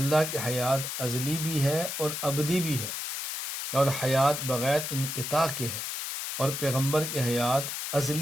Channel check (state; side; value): noise; left; hiss, 4 dB below the sound